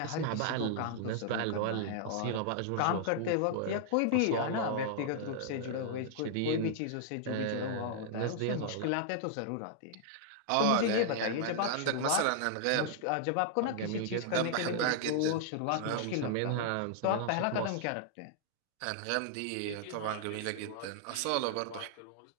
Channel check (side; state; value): both; different; correlation -0.01